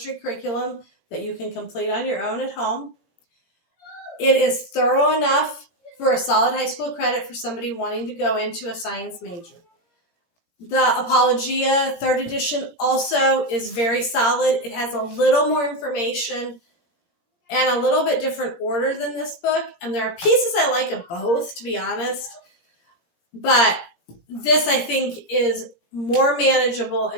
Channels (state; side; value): late; right; 17 ms